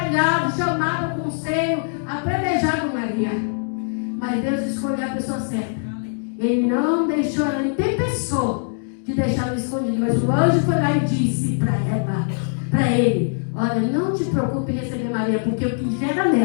chamado ao conselho, apredejado Maria. Mas Deus escolheu a pessoa certa. Ele não deixou ela, ele tem pessoa de deixar ela escondida. Mas o anjo foi lá e disse para ele, olha, não te preocupe em receber Maria, porque o que gera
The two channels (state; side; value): silent; right; 64 dB below the other